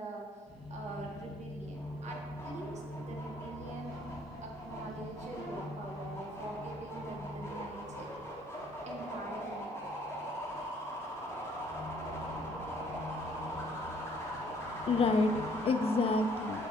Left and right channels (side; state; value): both; normal; correlation 0.62